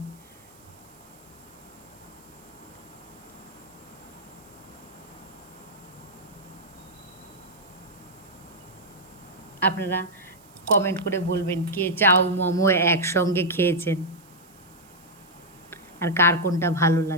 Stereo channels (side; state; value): right; noise; hiss, 27 dB below the sound